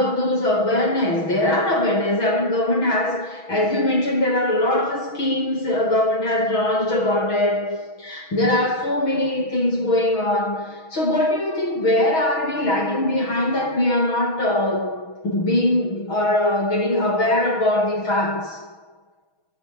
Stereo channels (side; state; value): right; late; 6.2 ms